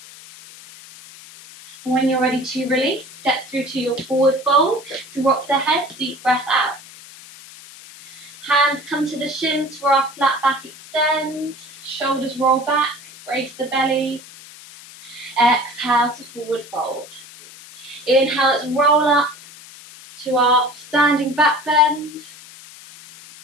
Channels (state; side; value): noise; left; hiss, 19 dB below the sound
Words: When you're ready to release, step through to your forward fold, drop the head, deep breath out. Hands come to the shins for our flat back extend, shoulders roll back, brace the belly. Exhale to forward fold. Inhale, let's roll up to our standing back bend.